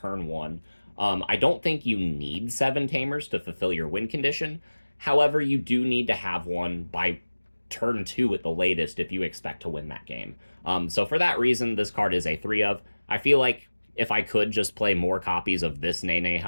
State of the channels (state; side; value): inverted; both; correlation -1.00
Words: 1. I don't think you need 7 Tamers to fulfill your win condition. However, you do need to have one by turn 2 at the latest if you expect to win that game. So for that reason, this card is a 3 of. I feel like if I could just play more copies of this Nene